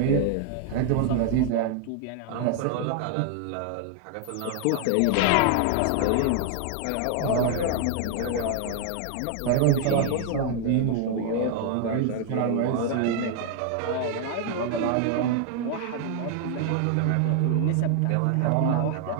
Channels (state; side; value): different; both; correlation 0.00